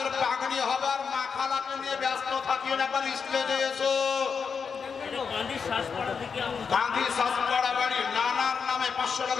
পাগড়ি হবে আর মাখালাকে নিয়ে ব্যস্ত থাকিও না, একবার স্টেজে এসো। গান্ধী শাসপাড়া বাড়ি নানার নামে 500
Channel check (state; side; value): quieter; right; 5.9 dB